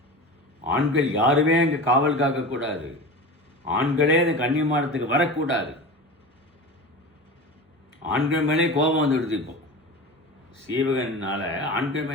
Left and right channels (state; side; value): normal; both; correlation 0.31